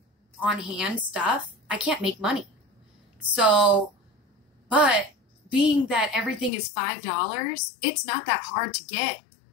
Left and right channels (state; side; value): drops out; right; at 6.5 s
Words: on hand stuff, I can't make money. So, but being that everything is $5, it's not that hard to get